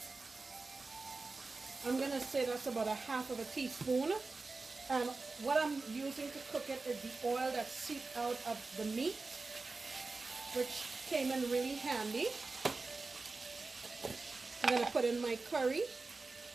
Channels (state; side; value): quieter; left; 3.8 dB